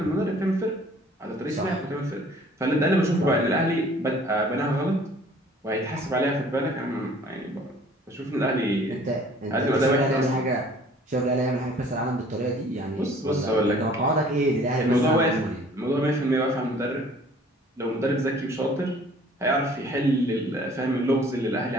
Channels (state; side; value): normal; both; correlation 0.53